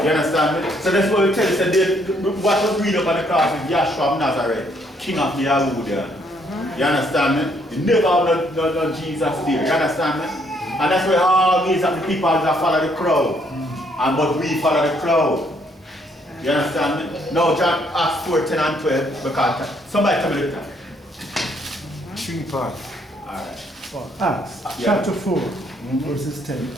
You understand me? So that's what we tell you, so what was read up on the cross is Yahshua of Nazareth, King of the Yahudian. You understand me? You never have no Jesus there. You understand me? And that's why all these are the people that follow the crowd. And but we follow the crowd. You understand me? Now John Acts 4, 10 and 12, because somebody tell me the time. 3 parts. Alright. Acts chapter 4, verses 10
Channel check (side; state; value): both; normal; correlation 0.69